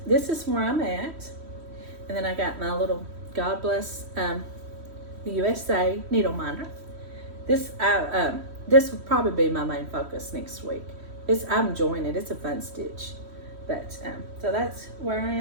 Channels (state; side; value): late; left; 3.1 ms